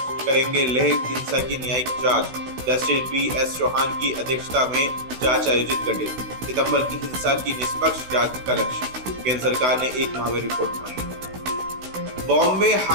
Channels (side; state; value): left; late; 16 ms